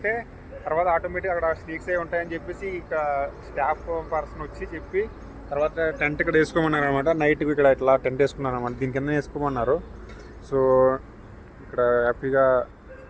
తర్వాత ఆటోమేటిక్ అక్కడ స్నేక్స్ అయి ఉంటాయని చెప్పేసి ఇక స్టాఫ్ పర్సన్ వచ్చి చెప్పి తర్వాత టెంట్ ఇక్కడ వేసుకోమన్నారు అనమాట. నైట్కి ఇక్కడ ఇట్లా టెంట్ వేసుకున్నాను అనమాట. దీని కింద వేసుకోమన్నారు. సో ఇక్కడ హ్యాపీగా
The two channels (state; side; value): identical; both; correlation 1.00